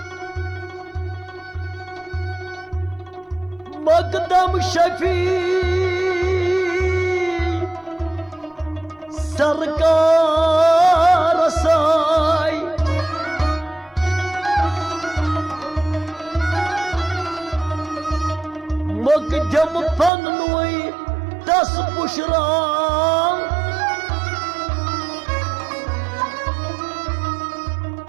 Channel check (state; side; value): drops out; left; at 20.1 s